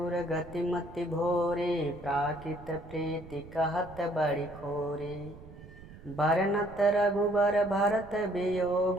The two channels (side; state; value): right; noise; rumble, 17 dB below the sound